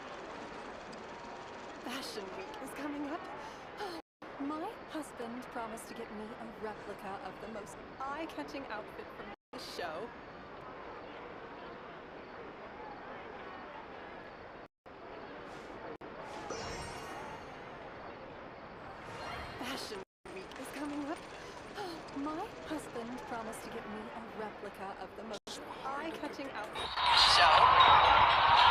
Fashion Week is coming up. My husband promised to get me a replica of the most eye-catching outfit from the show. Fashion Week is coming up. My husband promised to get me a replica of the most eye-catching outfit from the show.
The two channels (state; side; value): identical; both; correlation 1.00